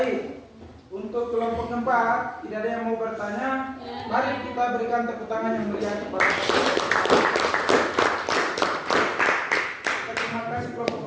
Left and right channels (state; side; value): identical; both; correlation 1.00